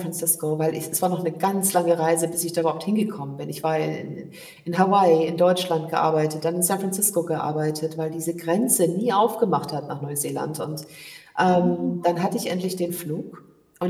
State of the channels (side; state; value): both; identical; correlation 1.00